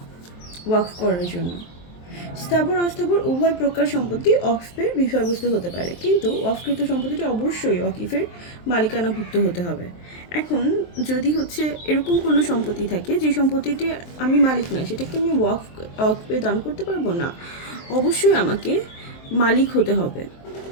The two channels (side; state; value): right; late; 23 ms